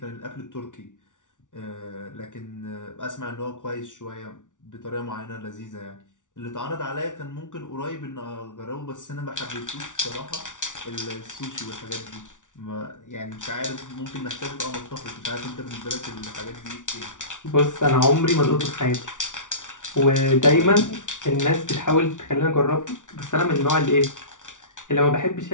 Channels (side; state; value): right; late; 0.87 ms